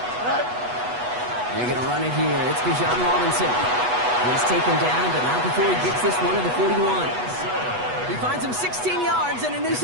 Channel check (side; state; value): left; late; 8.2 ms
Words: Right. They're going to run it here. It's Bijan Robinson. He's taken down, but not before he gets this one to the 41. He finds him 16 yards and a new